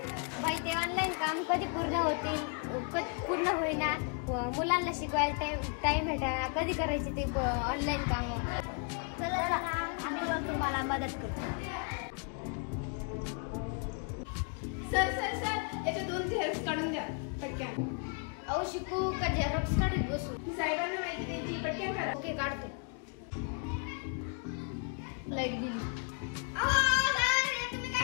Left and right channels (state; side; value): quieter; right; 38.1 dB